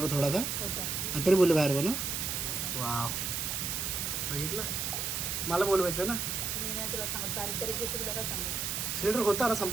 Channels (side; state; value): right; noise; hiss, 1 dB below the sound